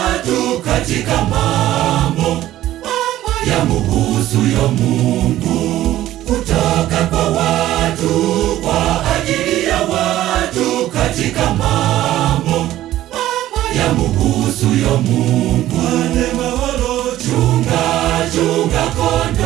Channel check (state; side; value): quieter; left; 14.1 dB